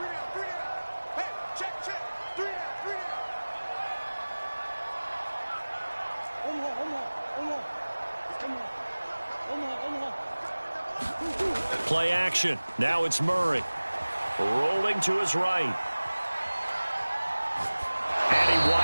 Play action. Now it's Murray. Rolling to his right. And he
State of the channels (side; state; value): both; inverted; correlation -1.00